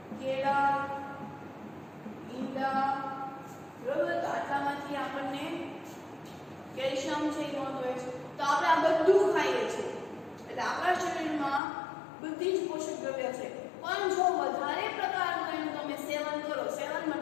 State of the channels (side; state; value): right; drops out; at 11.6 s